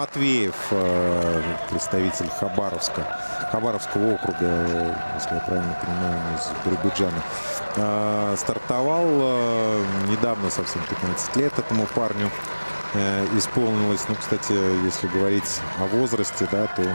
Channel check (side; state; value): both; inverted; correlation -1.00